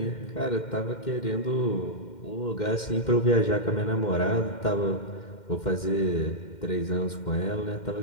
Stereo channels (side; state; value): right; late; 2.1 ms